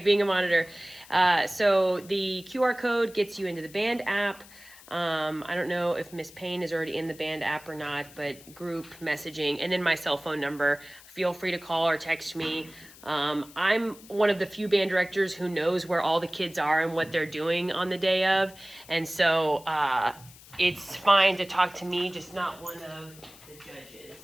being a monitor. So the QR code gets you into the band app. I don't know if Miss Payne is already in the band app or not, but group messaging, and then my cell phone number. Feel free to call or text me. I'm one of the few band directors who knows where all the kids are and what they're doing on the day of, and so it's fine to talk to me, just not one of the judges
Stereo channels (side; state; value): left; noise; hiss, 21 dB below the sound